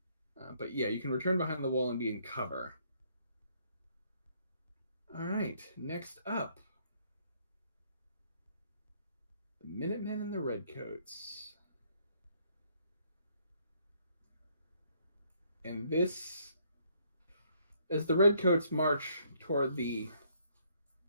But yeah, you can return behind the wall and be in cover. All right, next up, the Minutemen and the Redcoats. And this, as the Redcoats march toward the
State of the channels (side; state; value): both; inverted; correlation -0.67